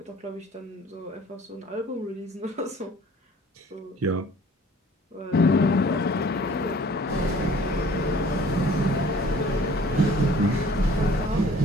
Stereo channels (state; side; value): normal; both; correlation 0.52